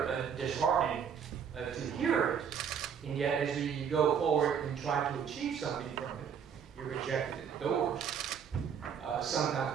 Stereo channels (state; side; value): quieter; left; 7.5 dB